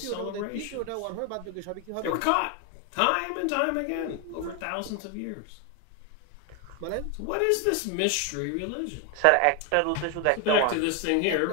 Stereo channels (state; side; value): different; both; correlation 0.01